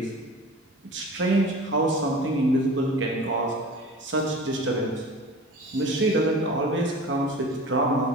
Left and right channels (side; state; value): both; normal; correlation 0.39